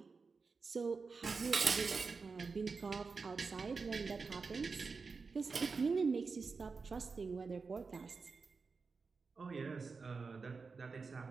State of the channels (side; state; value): left; quieter; 4.7 dB